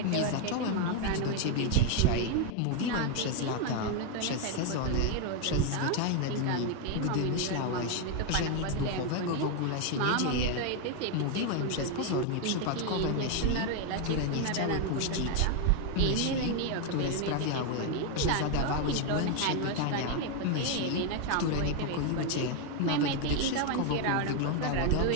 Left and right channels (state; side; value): different; both; correlation 0.01